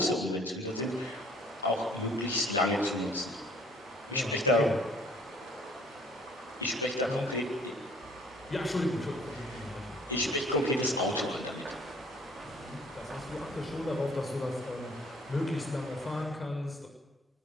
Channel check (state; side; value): normal; both; correlation 0.57